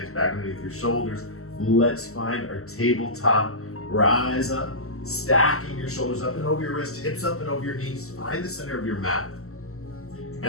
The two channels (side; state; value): right; late; 0.63 ms